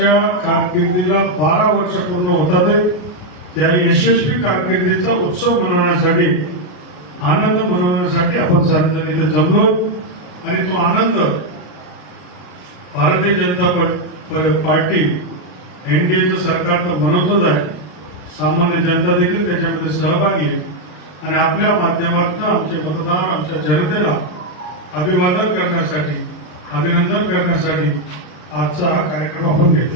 कारकिर्दीला 12 वर्ष पूर्ण होतात. त्या यशस्वी कारकिर्दीचा उत्सव मनवण्यासाठी, आनंद मनवण्यासाठी आपण सर्वजण इथे जमलो. आणि तो आनंद भारतीय जनता पार्टी, एनडीएचं सरकार तर मनवतच आहे, सामान्य जनता देखील त्याच्यामध्ये सहभागी आहे. आणि आपल्या माध्यमातून आमचे मतदार, आमच्या जनतेला अभिवादन करण्यासाठी, अभिनंदन करण्यासाठी आजचा हा कार्यक्रम आपण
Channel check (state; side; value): late; right; 33 ms